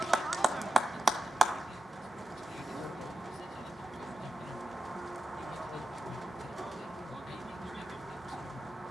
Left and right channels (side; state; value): both; normal; correlation 0.92